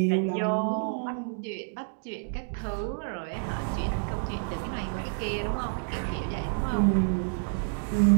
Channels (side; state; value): left; silent; digital silence